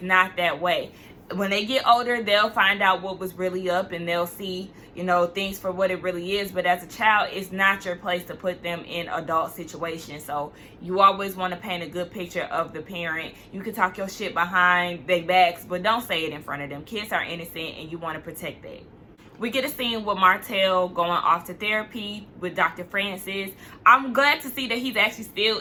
not that way. When they get older, they'll find out what was really up, and they'll see, you know, things for what it really is. But as a child, it's not your place to put them in adult situations. So you always want to paint a good picture of the parent. You can talk your shit behind their backs, but don't say it in front of them. Kids are innocent, and you want to protect that. We get a scene with Martell going off to therapy with Dr. Francis. I'm glad to see that he's actually still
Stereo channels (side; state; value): both; identical; correlation 1.00